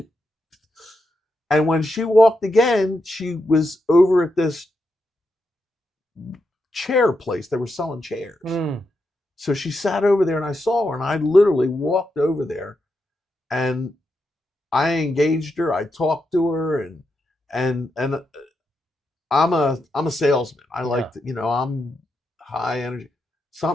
And when she walked again, she was over at this chair place. They were selling chairs. Mm. So she sat over there, and I saw her, and I literally walked over there, and I engaged her. I talked to her, and I'm a salesman. I like to, I'm high energy.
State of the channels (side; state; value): both; normal; correlation 0.84